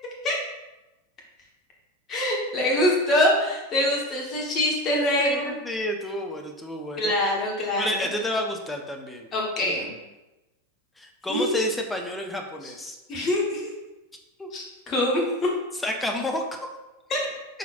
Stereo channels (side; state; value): both; normal; correlation 0.28